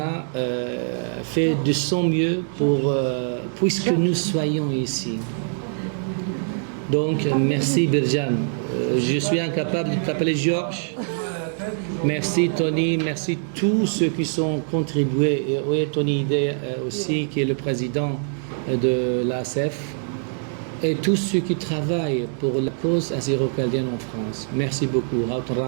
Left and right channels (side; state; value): left; silent; digital silence